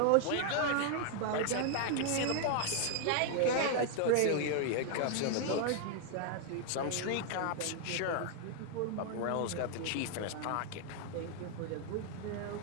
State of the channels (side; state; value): both; different; correlation 0.00